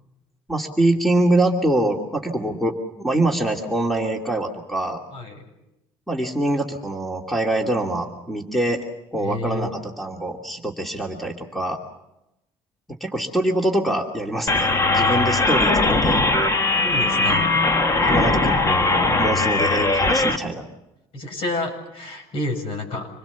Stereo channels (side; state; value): both; normal; correlation 0.46